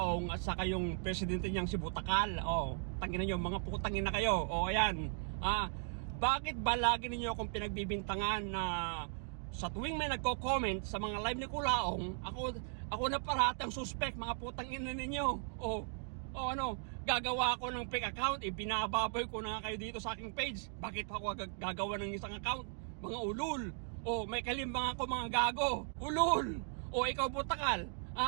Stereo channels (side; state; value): left; silent; 53 dB below the other